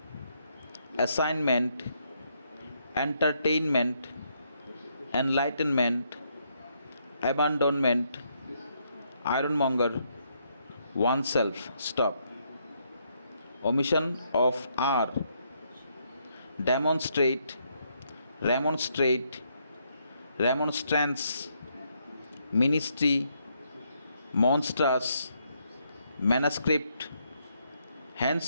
assignment, entertainment, enlightenment, abandonment, ironmonger, oneself. Stop. Omission of R. Demonstrate, remonstrate, remonstrance, ministry, monstrous, manuscript,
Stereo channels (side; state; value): both; inverted; correlation -0.74